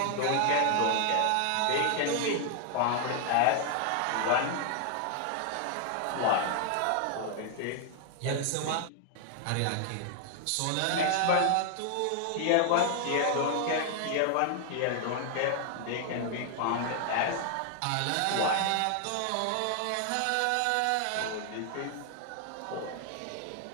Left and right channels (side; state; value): both; different; correlation 0.00